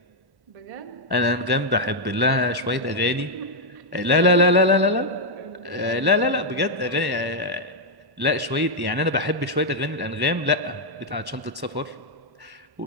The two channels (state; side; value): late; left; 1.1 ms